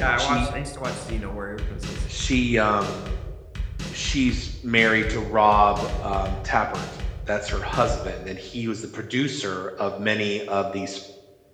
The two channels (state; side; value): identical; both; correlation 1.00